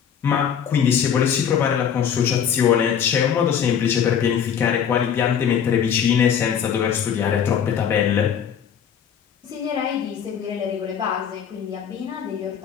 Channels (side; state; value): right; quieter; 8.2 dB